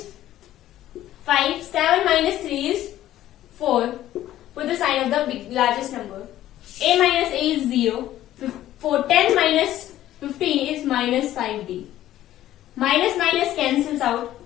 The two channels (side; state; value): right; quieter; 13.4 dB